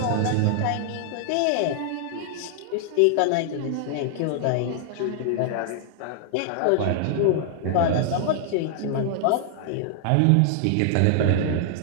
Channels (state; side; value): different; both; correlation -0.01